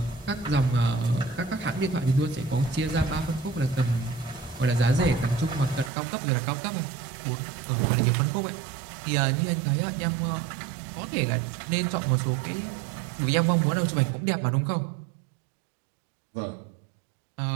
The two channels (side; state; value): left; drops out; at 5.9 s